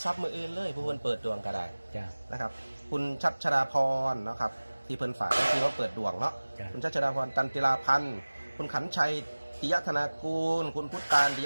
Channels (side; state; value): both; inverted; correlation -1.00